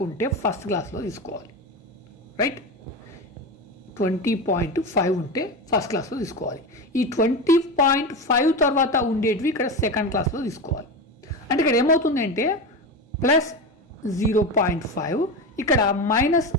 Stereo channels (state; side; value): normal; both; correlation 0.21